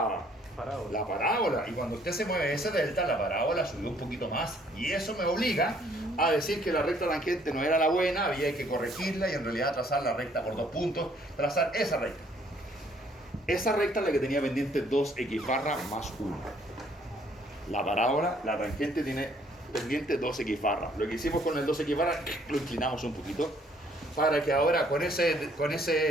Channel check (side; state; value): both; normal; correlation 0.63